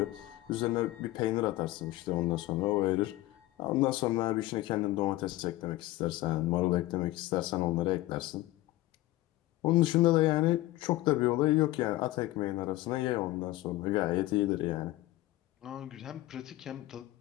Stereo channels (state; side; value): quieter; right; 17.3 dB